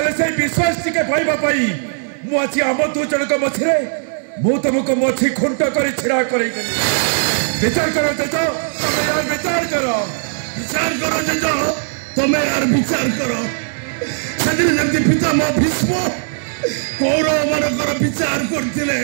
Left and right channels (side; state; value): left; silent; digital silence